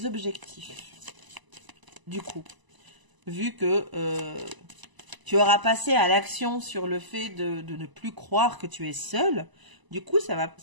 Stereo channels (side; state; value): left; late; 1.0 ms